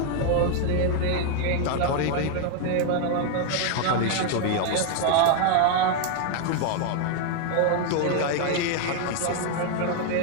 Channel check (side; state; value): both; different; correlation 0.01